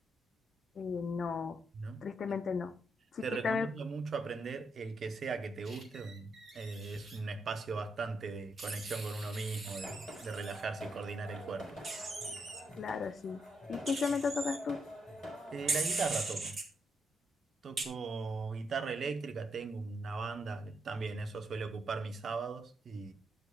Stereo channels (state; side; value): normal; both; correlation 0.79